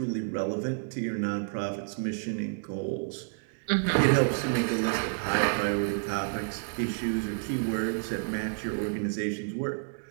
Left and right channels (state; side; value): silent; left; digital silence